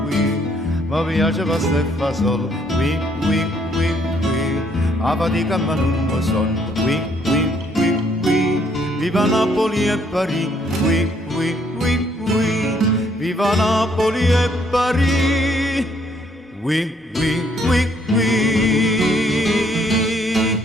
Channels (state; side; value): normal; both; correlation 0.67